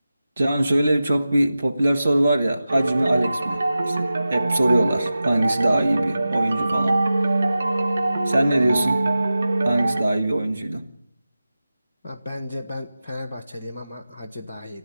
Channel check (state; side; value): inverted; both; correlation -0.94